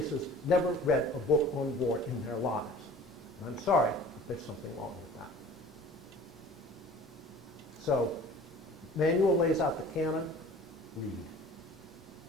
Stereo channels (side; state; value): both; normal; correlation 0.45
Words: never read a book on war in their lives. And I'm sorry, but there's something wrong with that. So, manual lays out the canon, read.